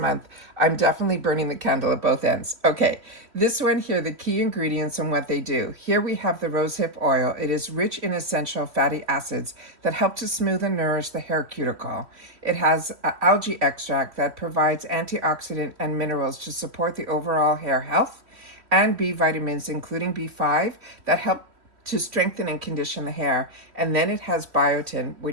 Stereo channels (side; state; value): left; late; 3.1 ms